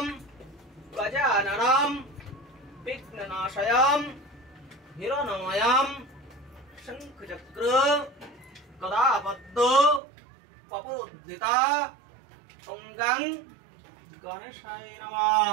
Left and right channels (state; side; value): drops out; left; at 10.0 s